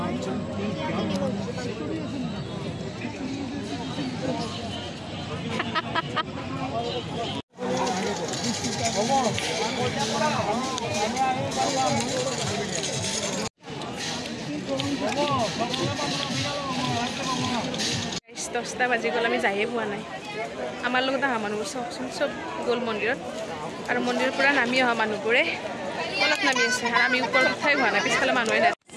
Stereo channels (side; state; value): both; identical; correlation 1.00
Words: দহটা বাজি গ'ল আমি যায়ে পোৱা নাই আমাৰ লগত অহা মানুহবোৰ চাওকচোন চব গ'ল মন্দিৰত আৰু মন্দিৰৰ পৰা নামি অহা মানুহবোৰে অলপ নামি আছে আৰু আমি ওপৰত উঠাই হোৱা নাই পিছফালে মানুহে নাই